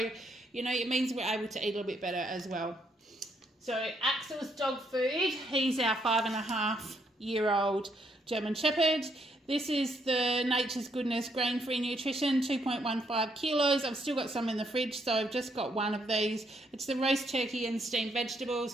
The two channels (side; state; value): both; normal; correlation 0.74